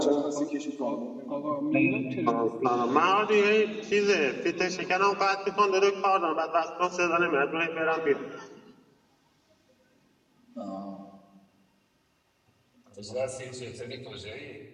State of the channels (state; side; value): identical; both; correlation 1.00